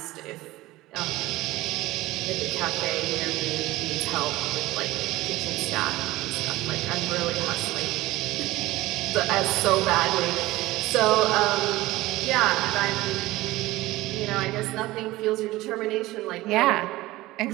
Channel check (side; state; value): left; quieter; 18.2 dB